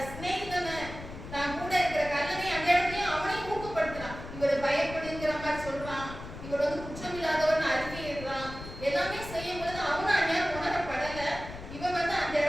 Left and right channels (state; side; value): noise; left; rumble, 12 dB below the sound